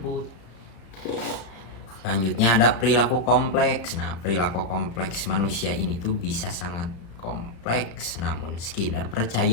Selanjutnya ada perilaku kompleks. Nah, perilaku kompleks manusia ini tuh bisa sangat kompleks, namun Skinner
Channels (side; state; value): right; late; 35 ms